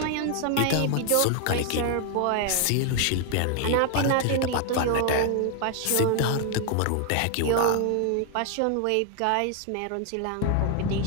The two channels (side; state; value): both; different; correlation 0.00